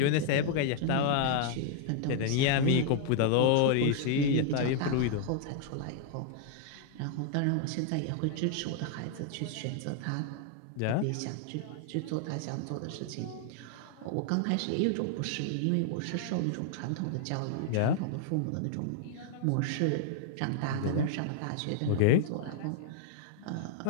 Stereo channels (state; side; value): different; both; correlation 0.00